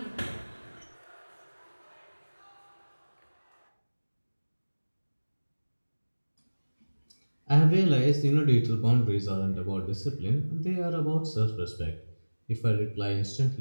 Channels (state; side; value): inverted; both; correlation -1.00